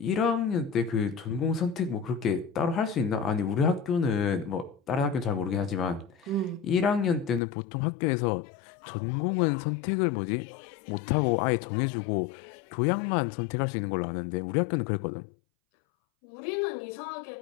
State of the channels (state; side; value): drops out; right; at 7.4 s